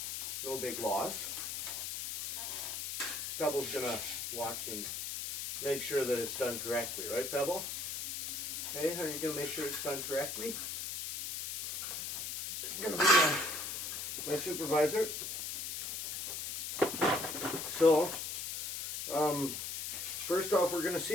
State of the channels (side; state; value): left; noise; hiss, 5 dB below the sound